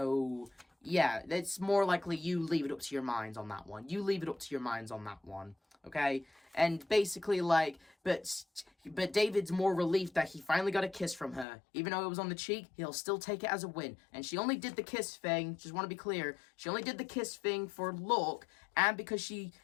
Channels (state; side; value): drops out; right; at 11.5 s